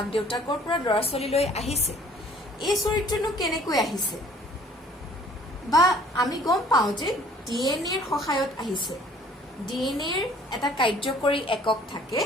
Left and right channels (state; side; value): normal; both; correlation 0.55